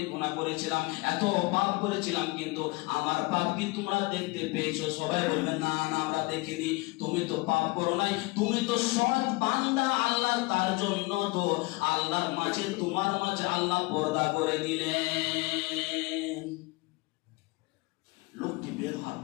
গুনাহ করেছিলাম, এত পাপ করেছিলাম, কিন্তু আমার পাপ কি তোমরা দেখতে পেয়েছো? সবাই বলবে, না না আমরা দেখিনি, তুমি তো পাপ করো নাই, তুমি তো সৎ বান্দা আল্লাহ, তার জন্য তো আল্লাহর মাঝে তোমার মাঝে আল্লাহ পর্দা করে দিলেন। লোকটি বের হওয়ার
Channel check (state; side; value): quieter; right; 24.4 dB